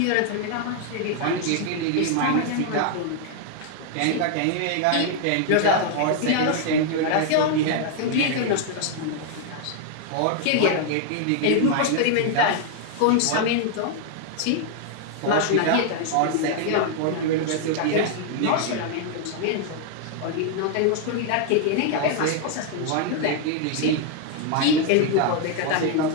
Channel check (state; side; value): different; both; correlation 0.00